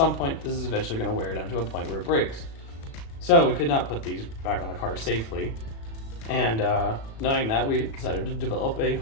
point, this is eventually going to wear down to a point where it breaks. So we could not put these back on the car safely. And knowing that, we decided to develop a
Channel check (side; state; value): right; late; 36 ms